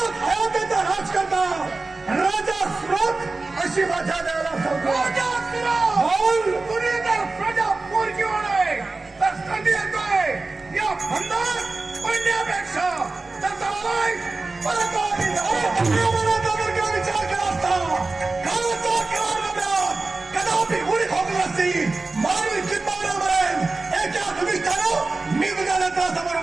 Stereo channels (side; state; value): left; quieter; 3.5 dB